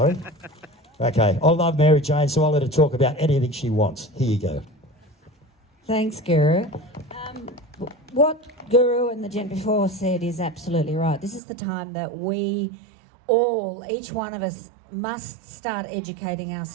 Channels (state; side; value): drops out; left; at 11.4 s